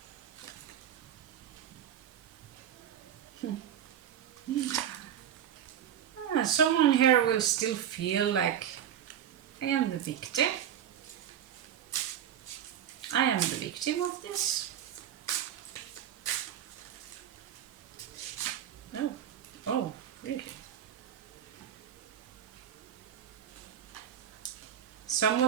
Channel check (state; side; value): quieter; left; 9.7 dB